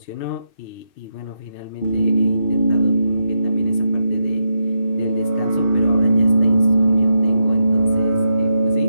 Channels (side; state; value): right; late; 2.6 ms